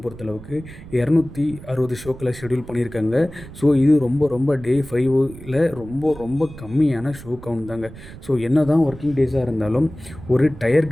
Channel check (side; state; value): right; noise; rumble, 16 dB below the sound